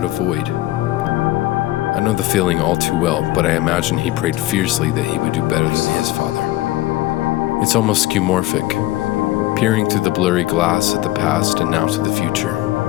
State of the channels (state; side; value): quieter; right; 17.0 dB